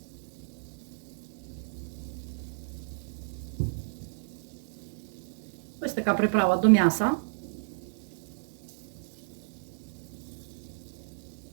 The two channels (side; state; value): left; silent; 56 dB below the other